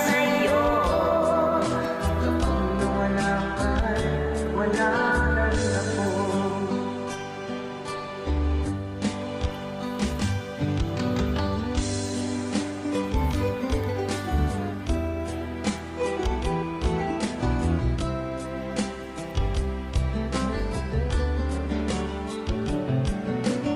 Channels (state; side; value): identical; both; correlation 1.00